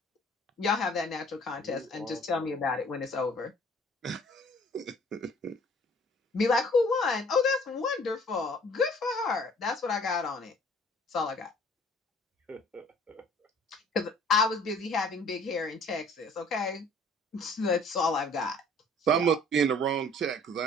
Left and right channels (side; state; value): both; normal; correlation 0.54